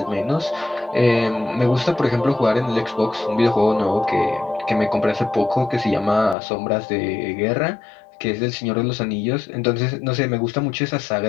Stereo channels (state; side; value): drops out; right; at 6.4 s